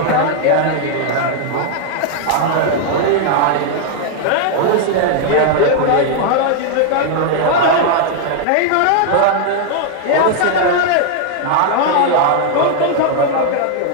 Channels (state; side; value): different; both; correlation 0.00